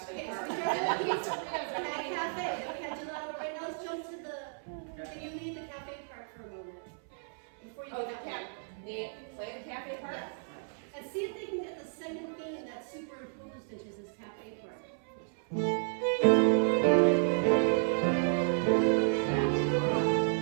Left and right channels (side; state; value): left; silent; 56 dB below the other